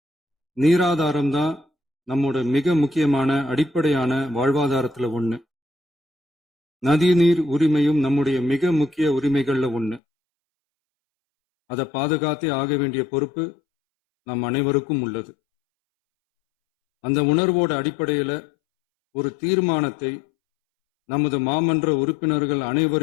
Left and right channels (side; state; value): right; drops out; at 10.0 s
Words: நீராதாரம் தான் நம்மோட மிக முக்கியமான அடிப்படையான வாழ்வாதாரத்துல ஒண்ணு. நதி நீர் உரிமையும் நம்முடைய மிக முக்கிய உரிமைகள்ல ஒண்ணு. அதை பாதுகாத்தே ஆக வேண்டிய பொறுப்பு நம் அனைவருக்கும் உள்ளது. அந்த உணர்வோட அடிப்படையில ஒரு தீர்மானத்தை நமது மாமன்ற உறுப்பினர்கள்